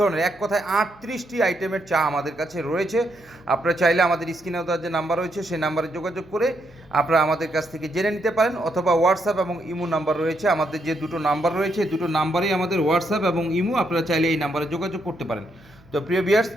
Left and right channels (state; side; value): noise; right; hum, 28 dB below the sound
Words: এক কথায় 38টি আইটেমের চা আমাদের কাছে রয়েছে। আপনারা চাইলে আমাদের স্ক্রিনে দেওয়ার যে নাম্বার রয়েছে সেই নাম্বারে যোগাযোগ করে আপনারা আমাদের কাছ থেকে জেনে নিতে পারেন, অথবা হোয়াটসঅ্যাপ এবং ইমো নাম্বার রয়েছে। আমাদের যে দুটো নাম্বার রয়েছে, দুটো নাম্বারেই আমাদের হোয়াটসঅ্যাপ এবং ইমো, আপনারা চাইলে এই নাম্বারে যোগাযোগ করতে পারেন। তো প্রিয় ভিউয়ার্স,